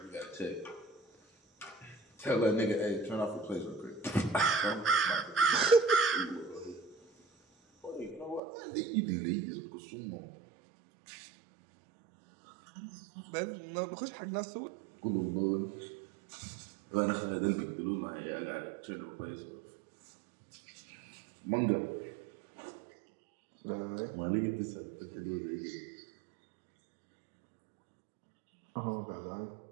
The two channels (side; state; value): left; drops out; at 8.4 s